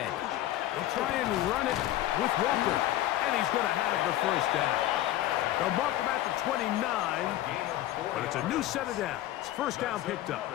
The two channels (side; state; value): right; quieter; 14.2 dB